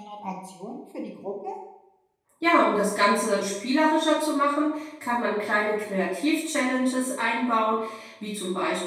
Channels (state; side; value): identical; both; correlation 1.00